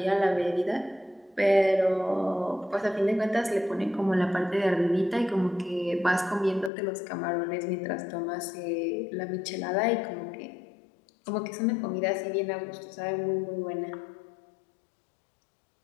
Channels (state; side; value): drops out; right; at 6.7 s